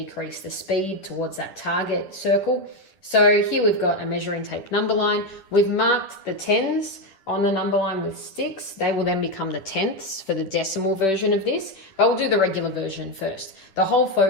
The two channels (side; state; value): right; late; 10 ms